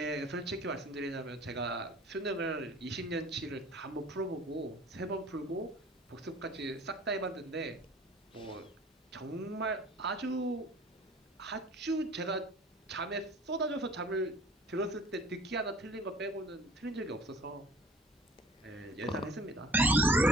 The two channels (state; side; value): normal; both; correlation 0.48